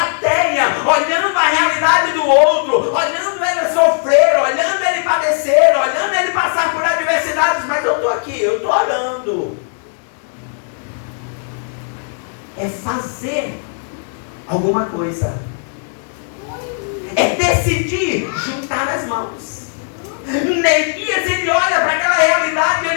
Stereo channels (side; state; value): right; silent; 66 dB below the other